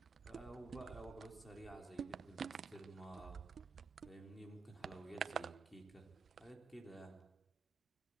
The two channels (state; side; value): quieter; left; 4.6 dB